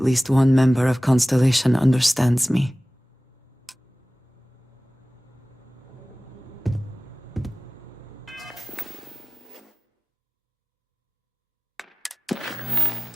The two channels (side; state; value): both; normal; correlation 0.98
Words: one member of Constellation understands me.